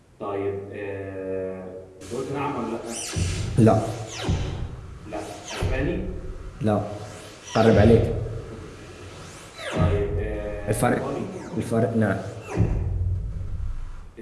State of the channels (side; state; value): both; identical; correlation 1.00